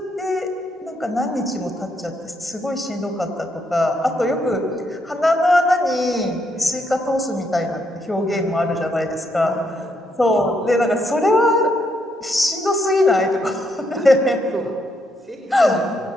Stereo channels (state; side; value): normal; both; correlation 0.76